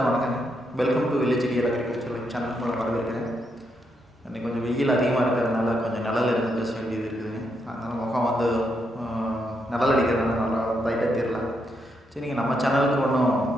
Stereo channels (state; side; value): normal; both; correlation 0.80